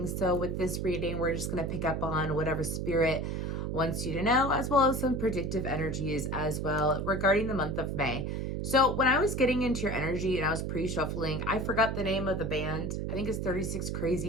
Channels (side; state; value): right; noise; hum, 2 dB below the sound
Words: So with this reading, we're just going to pick up on whatever spirit wants you to know, as well as some predictive energies as well regarding the month of May. So when I was getting into your energy and I was pre-shuffling, I forgot the name of the band. I think it's 36